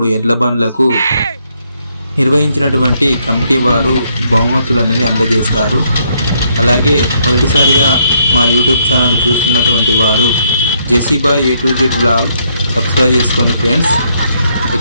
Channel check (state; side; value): inverted; both; correlation -0.72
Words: ఎడ్లబండ్లకు నిర్వహించినటువంటి కమిటీ వారు బహుమతులు అనేది అందజేస్తారు। అలాగే మొదటిసారిగా మా యూట్యూబ్ ఛానల్ చూస్తున్నటువంటి వారు జెసిబాయ్ A to Z blog subscribe చేసుకోండి ఫ్రెండ్స్।